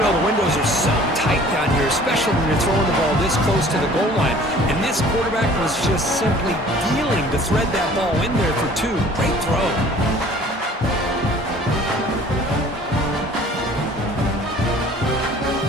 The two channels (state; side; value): normal; both; correlation 0.50